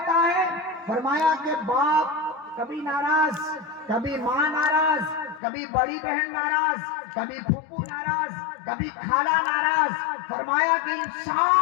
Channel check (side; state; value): right; drops out; at 5.4 s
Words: ہے، فرمایا کہ باپ کبھی ناراض، کبھی ماں ناراض، کبھی بڑی بہن ناراض، کبھی پھوپھو ناراض، کبھی خالہ ناراض. فرمایا کہ ان